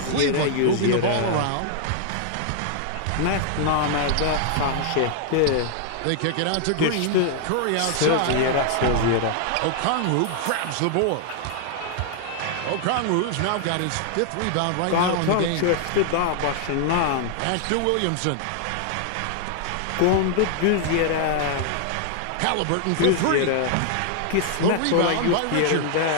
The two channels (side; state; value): both; different; correlation 0.00